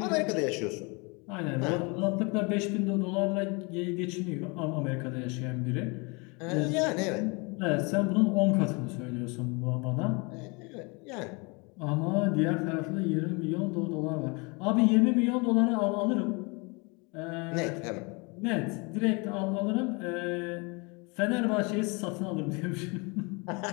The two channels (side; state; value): right; quieter; 29.7 dB